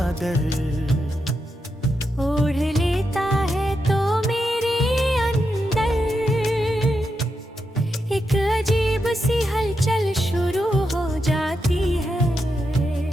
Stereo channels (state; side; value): normal; both; correlation 0.85